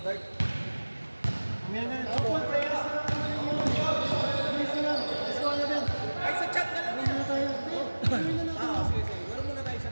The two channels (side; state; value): both; inverted; correlation -1.00